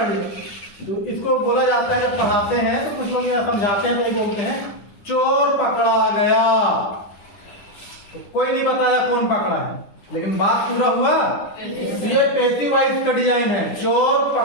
ले, तो इसको बोला जाता है, जब पढ़ाते हैं तो कुछ लोग यह समझाते हैं तो यही बोलते हैं चोर पकड़ा गया। तो कोई नहीं बताया कौन पकड़ा है, लेकिन बात पूरा हुआ। ये पैसिव वॉइस का डिजाइन है। चोर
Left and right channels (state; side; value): late; right; 10 ms